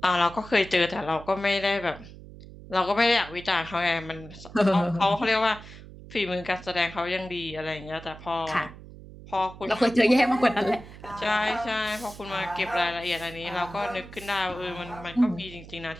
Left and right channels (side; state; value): right; noise; hum, 17 dB below the sound